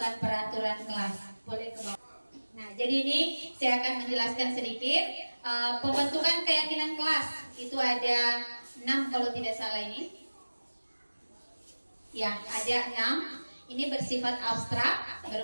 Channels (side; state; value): both; inverted; correlation -1.00